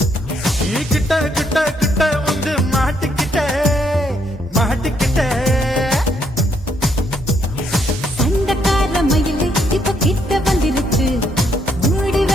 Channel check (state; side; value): normal; both; correlation 0.73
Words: ये किट किट किट வந்து மாட்டிக்கிட்ட சண்டக்கார மயிலு இப்ப கிட்ட வந்துருச்சு மூடி